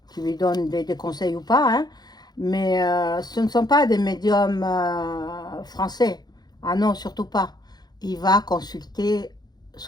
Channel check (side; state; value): right; late; 0.20 ms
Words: qui lui donnent des conseils ou pas, hein, mais ce ne sont pas des médiums français. Ah non, surtout pas. Il va consulter